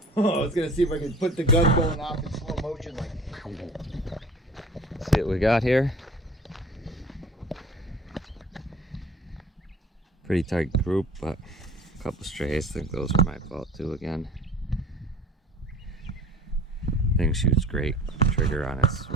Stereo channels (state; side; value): normal; both; correlation 0.45